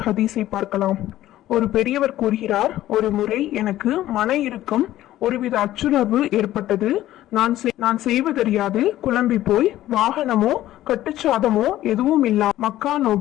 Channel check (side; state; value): right; quieter; 14.1 dB